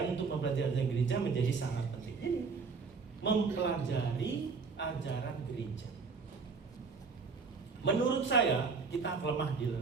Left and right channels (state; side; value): quieter; left; 4.9 dB